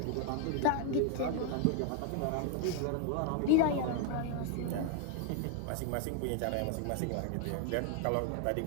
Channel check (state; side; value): different; both; correlation 0.01